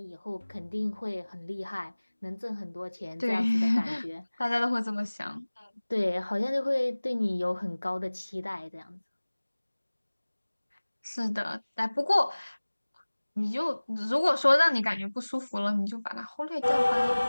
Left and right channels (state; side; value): inverted; both; correlation -1.00